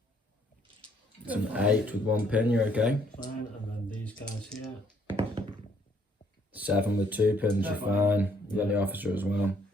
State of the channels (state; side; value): normal; both; correlation 0.66